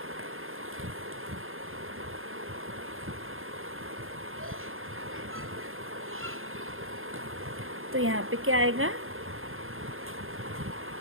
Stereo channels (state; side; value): late; left; 0.60 ms